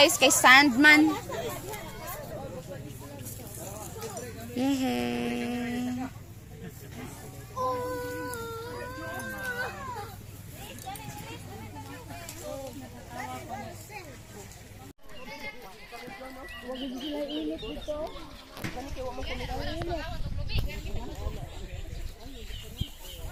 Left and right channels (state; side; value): identical; both; correlation 1.00